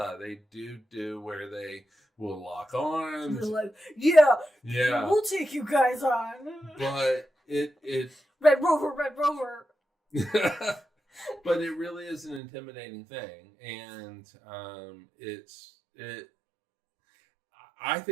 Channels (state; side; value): drops out; left; at 12.4 s